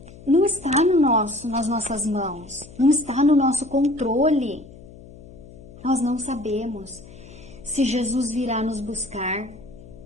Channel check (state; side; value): noise; left; hum, 19 dB below the sound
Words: Não está nas nossas mãos. Não está no nosso controle. Nós não sabemos se Jesus virá nos buscar